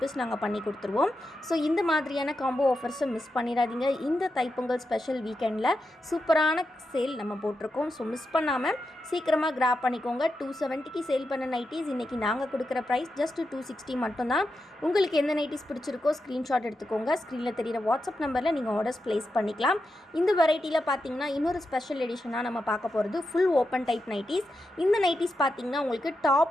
நாங்கள் பண்ணி கொடுத்துருவோம். ஸோ இந்த மாதிரியான காம்போ ஆஃபர்ஸை மிஸ் பண்ணிடாதீங்க. இந்த தைப்பொங்கல் ஸ்பெஷல் வீக்கெண்டில் சூப்பரான சேல் நம்ம போட்டிருக்கோம். ஸோ மிஸ் பண்ணாமல் சீக்கிரமாக கிராப் பண்ணிக்கோங்க. 270க்கு சேல் பண்ண நைட்டிஸ் இன்றைக்கி நாங்கள் கொடுக்குற ப்ரைஸ் ஜஸ்ட் 260 மட்டும்தான். உங்களுக்கு எந்த நைட்டிஸ் பிடிச்சிருக்கோ ஸ்க்ரீன்ஷாட் எடுத்துக்கோங்க. ஸ்க்ரீனில் தெரிகிற வாட்ஸ்அப் நம்பரில் நீங்கள் ஆர்டர்ஸ் ப்ளேஸ் பண்ணிக்கலாம். இந்த வெரைட்டியில் பார்த்தீங்கன்னா இன்னொரு ஸ்பெஷல் எடிஷனாக நம்ம பார்க்க போகிறது ஃபுல் ஓப்பன் டைப் நைட்டிஸ். இந்த நைட்டிஸ் பார்த்தீங்கன்னா உங்களுக்கு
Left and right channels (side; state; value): both; normal; correlation 0.87